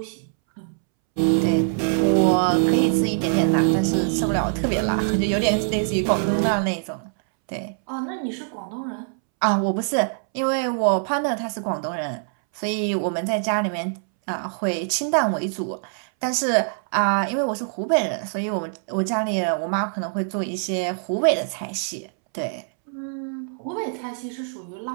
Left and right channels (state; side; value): silent; left; 63 dB below the other